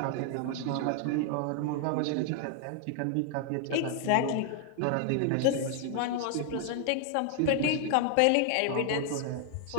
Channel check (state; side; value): different; both; correlation 0.00